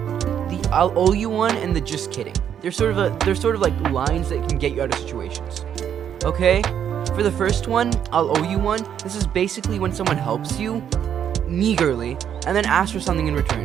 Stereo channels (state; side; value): quieter; left; 9.0 dB